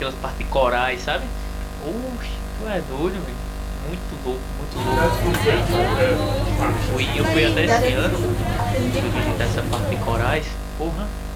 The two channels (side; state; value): both; identical; correlation 1.00